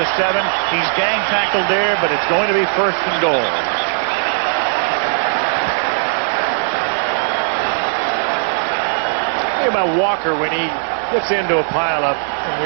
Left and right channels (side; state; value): left; silent; 57 dB below the other